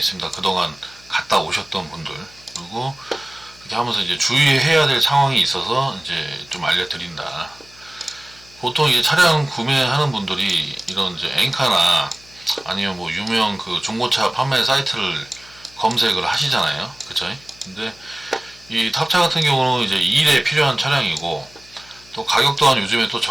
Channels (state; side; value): noise; left; hum, 25 dB below the sound